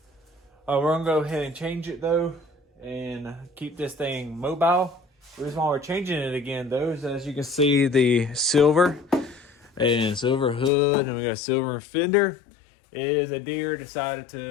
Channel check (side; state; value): right; drops out; at 10.7 s